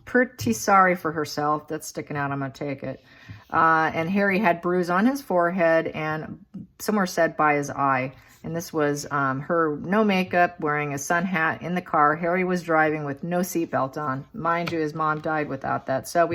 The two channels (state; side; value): identical; both; correlation 1.00